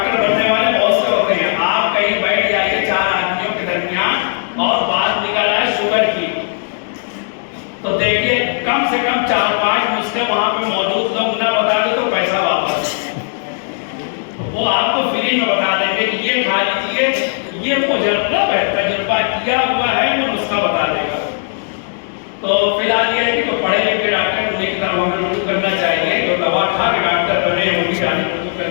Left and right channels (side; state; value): right; silent; digital silence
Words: بننے والے بہت سے ہوتے ہیں۔ آپ کہیں بیٹھ جائیے 4 آدمیوں کے درمیان اور بات نکل آئے شوگر کی، تو دیکھیے کم سے کم 4-5 نسخے وہاں پہ موجود لوگ نہ بتا دے تو پیسہ واپس۔ وہ آپ کو فری میں بتا دیں گے کہ یہ کھا لیجیے، یہ مجرب ہے، تجربہ کیا ہوا ہے، وہ نسخہ بتا دے گا۔ تو فی الحال یہ ہے کہ تو پڑھے لکھے ڈاکٹر انہیں کی طرف ہمیں رجوع کرنا چاہیے، جو دوا کھا کے ڈاکٹر بنے ان کی جانب رجوع